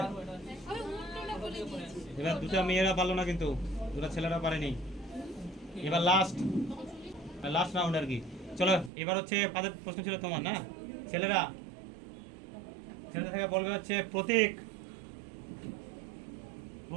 এবার দুটা মেয়েরা পারলো না, কিন্তু দুটা ছেলেরা পারেনি। এবার লাস্ট রাউন্ড আর কি। চলো, এবার হচ্ছে কাদের প্রশ্ন ছিল তোমার? না, ছেলেদের থেকে বলবে হচ্ছে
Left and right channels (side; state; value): left; drops out; at 8.9 s